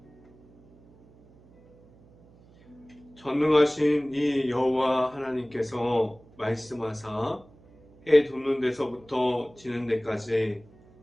전능하신 이 여호와 하나님께서 말씀하사 해 돋는 데서부터 지는 데까지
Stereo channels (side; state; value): right; noise; hum, 27 dB below the sound